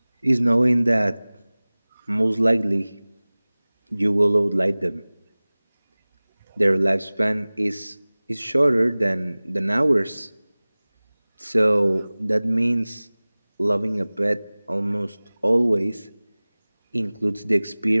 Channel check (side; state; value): both; inverted; correlation -0.99